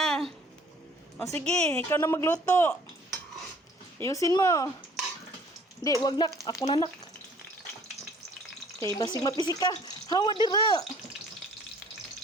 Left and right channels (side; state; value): both; normal; correlation 0.55